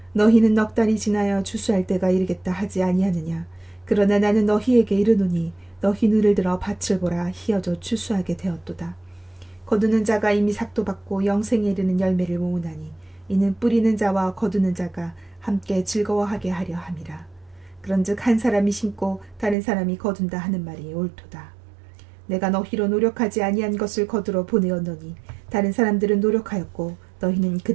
너희는 넉 달이 지나여 추수할 때가 이르겠다 하지 아니하느냐. 그러나 나는 너희에게 이르노니 너희 눈을 들어 밭을 보라. 희어져 추수하게 되었도다. 거두는 자가 이미 삭도 받고 영생에 이르는 열매를 모으나니 이는 뿌리는 자와 거두는 자가 함께 즐거워하게 하려 함이라. 그런즉 한 사람이 심고 다른 사람이 거둔다 하는 말이 옳도다. 내가 너희로 노력하지 아니한 것을 거두러 보내었노니 다른 사람들은 노력하였고 너희는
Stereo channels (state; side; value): drops out; left; at 19.6 s